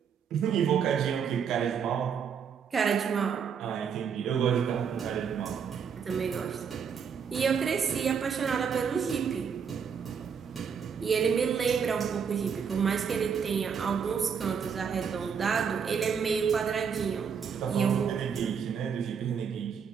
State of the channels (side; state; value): left; quieter; 6.9 dB